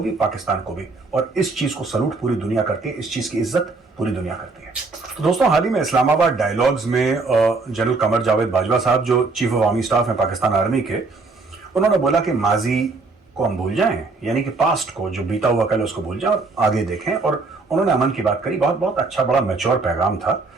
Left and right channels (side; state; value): left; quieter; 3.8 dB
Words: भी, पाकिस्तान को भी, और इस चीज को सलूट पूरी दुनिया करती है, इस चीज की इज्जत पूरी दुनिया करती है। तो दोस्तों, हाल ही में इस्लामाबाद डायलॉग्स में जनरल कमर जावेद बाजवा साहब जो चीफ ऑफ आर्मी स्टाफ हैं पाकिस्तान आर्मी के, उन्होंने बोला कि माजी को हम भूल जाएं, यानी कि पास्ट को, जो बीता हुआ कल, उसको भूल जाएं और आगे देखें। और उन्होंने अमन की बात करी। बहुत बहुत अच्छा, बड़ा मैच्योर पैगाम था।